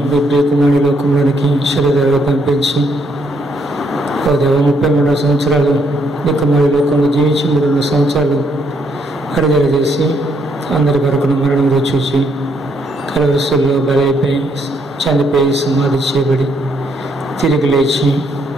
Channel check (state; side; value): normal; both; correlation 0.73